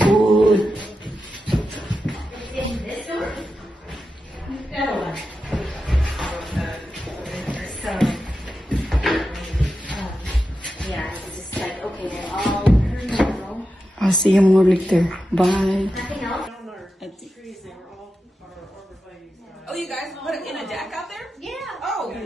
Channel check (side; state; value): both; normal; correlation 0.90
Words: I'll see you more later. Bye. Oh, you guys put it in a deck out there? Yeah. Oh,